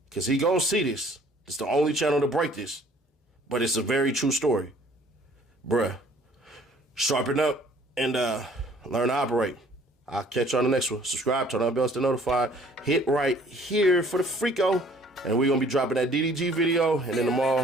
because he going to see this. It's the only channel to break this, but it's a very true story. Bruh, sharpen up and learn to operate. I'll catch you on the next one. Subscribe, turn on bells to notify. Hit right here for the Freako. And we're going to be dropping that DDG video. And then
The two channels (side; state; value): both; normal; correlation 0.56